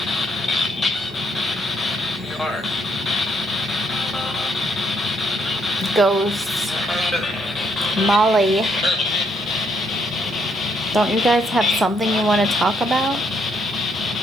Ghosts. Molly. Don't you guys have something you want to talk about?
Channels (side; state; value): both; normal; correlation 0.72